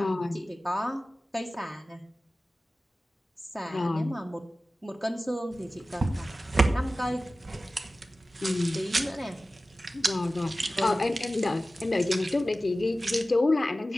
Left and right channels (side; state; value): both; normal; correlation 0.96